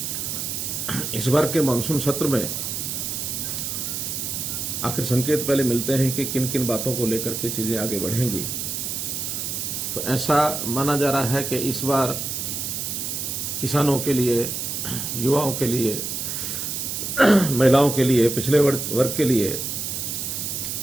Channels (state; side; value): noise; right; hiss, 3 dB below the sound